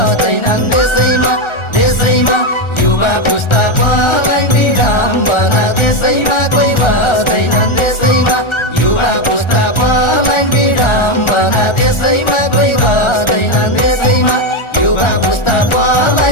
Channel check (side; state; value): right; late; 1.4 ms